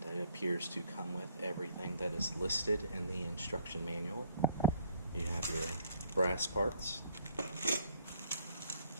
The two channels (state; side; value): inverted; both; correlation -0.62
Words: it appears to come with everything that is listed in the instruction manual. You have your brass parts.